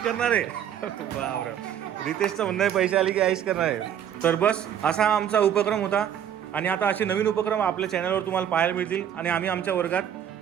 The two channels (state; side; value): quieter; left; 9.6 dB